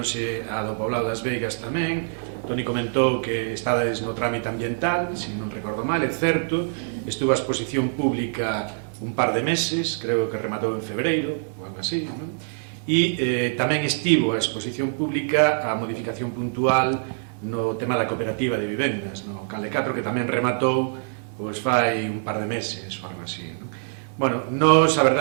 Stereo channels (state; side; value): silent; left; digital silence